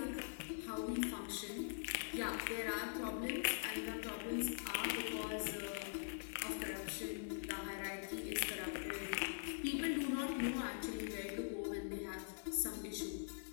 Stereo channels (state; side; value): silent; right; digital silence